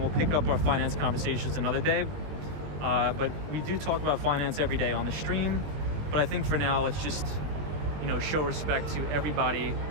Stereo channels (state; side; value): late; left; 20 ms